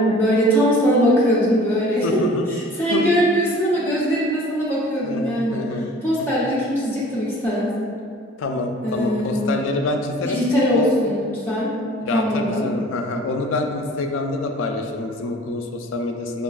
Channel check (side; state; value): both; normal; correlation 0.48